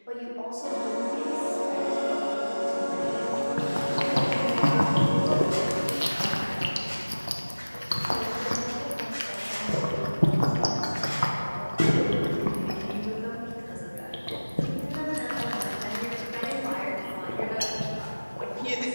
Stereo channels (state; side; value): inverted; both; correlation -1.00